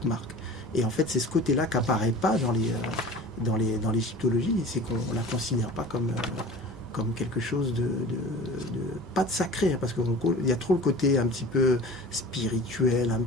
marque. Et en fait, c'est ce côté-là qui n'apparaît pas dans l'égyptologie, c'est qu'on ne la considère pas comme quelque chose pas de sacré, hein, parce qu'il y a trop le côté un petit peu spirituel, un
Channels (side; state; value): both; normal; correlation 0.39